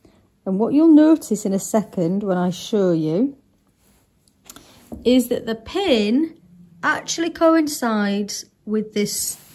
And what you'll notice in a second when I show you is that the pin actually coincides with this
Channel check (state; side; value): identical; both; correlation 1.00